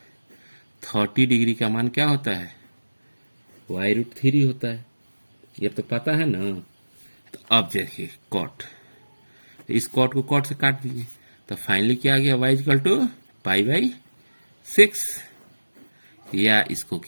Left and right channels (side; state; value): both; inverted; correlation -1.00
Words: 30 डिग्री का मान क्या होता है, y√3 होता है। ये तो पता है ना। तो अब देखिए cot, तो इस cot को cot से काट दीजिए, तो फाइनली क्या आ गया, y इक्वल टू π/6। या इसको